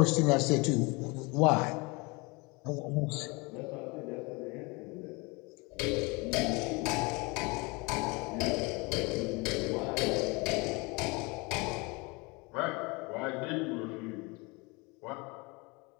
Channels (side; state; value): right; quieter; 27.2 dB